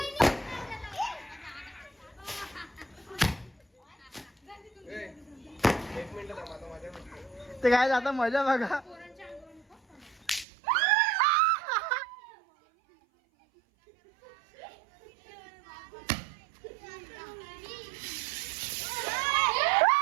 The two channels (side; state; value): left; drops out; at 10.5 s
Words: ते काय आता मजा बघा.